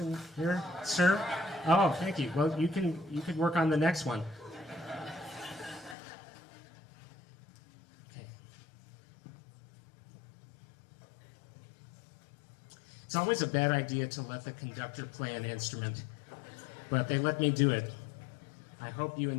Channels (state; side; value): drops out; right; at 6.0 s